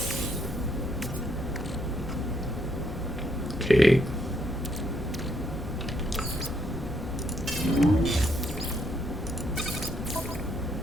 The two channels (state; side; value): normal; both; correlation 0.74